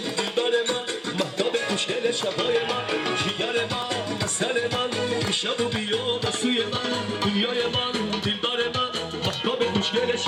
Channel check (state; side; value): identical; both; correlation 1.00